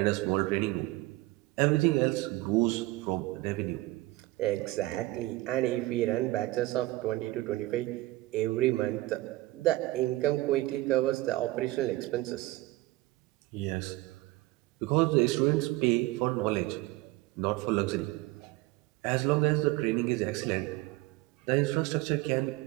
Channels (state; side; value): quieter; left; 19.2 dB